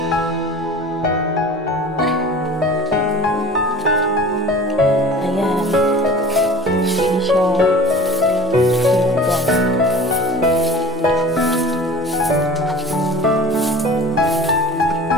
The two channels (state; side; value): normal; both; correlation 0.40